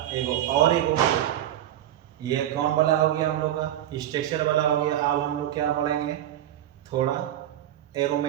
एक ये कौन वाला हो गया हम लोग का, स्ट्रक्चर वाला हो गया। अब हम लोग क्या पढ़ेंगे, थोड़ा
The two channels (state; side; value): quieter; left; 12.1 dB